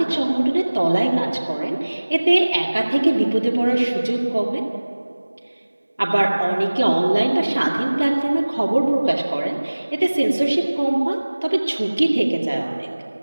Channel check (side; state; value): both; inverted; correlation -1.00